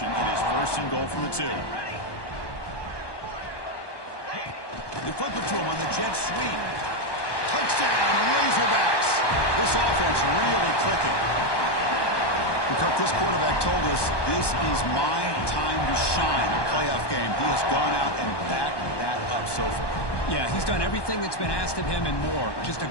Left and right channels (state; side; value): late; right; 1.2 ms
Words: It is 1st and goal from the 2. They flip it to him on the jet sweep. Touchdown, Razorbacks. This offense really clicking. Kirk, this quarterback told us this is my time to shine in a playoff game. He has gone out and backed that up so far. Yeah, he's done everything that's been asked of him and more. Just a